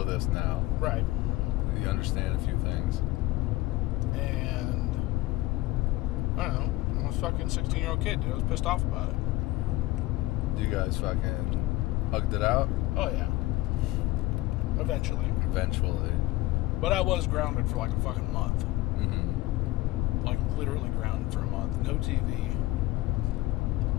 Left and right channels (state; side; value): quieter; right; 18.5 dB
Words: this now. Right. You understand a few things. And I don't know. I was a fucking 16-year-old kid, dude. I was pissed off about it. You guys fucking hugged it out? Oh, yeah. Eventually. Eventually. But I was grounded for like a fucking month. Mm-hmm. Like, literally grounded for a month. No TV.